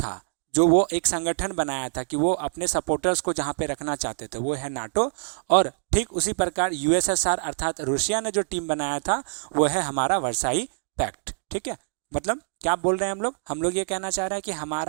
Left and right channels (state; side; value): silent; left; digital silence